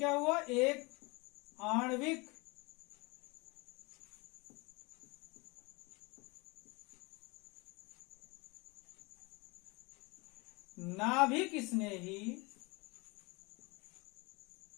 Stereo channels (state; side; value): quieter; right; 26.3 dB